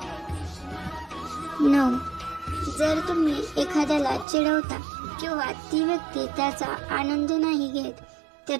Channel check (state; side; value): drops out; left; at 4.2 s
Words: 9. जर तुम्ही एखाद्याला चिडवता किंवा ती व्यक्ती त्याचा आनंद नाही घेत